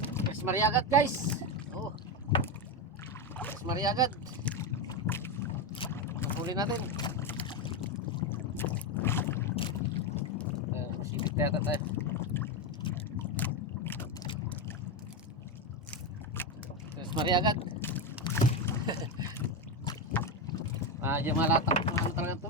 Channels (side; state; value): both; normal; correlation 0.11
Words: Mas mariagad guys. Oh. Mas mariagad. Huli natin. Sipit na yata tayo. Mas mariagad. Diyan malatak. Ano talagang